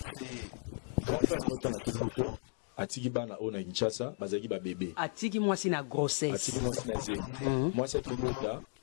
la naissance de ces enfants? Les enfants sont nés pendant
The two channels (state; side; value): silent; right; 54 dB below the other